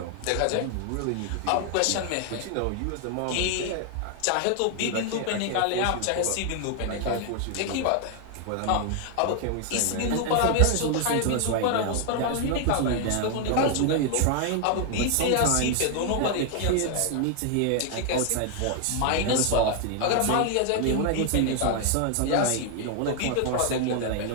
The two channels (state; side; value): different; both; correlation 0.00